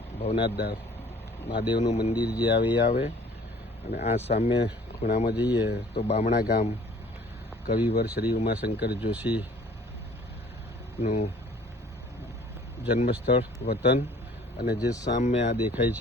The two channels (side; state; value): both; normal; correlation 0.53